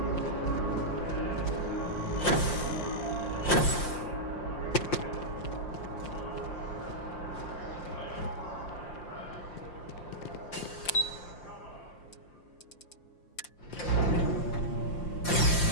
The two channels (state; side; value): late; right; 5.7 ms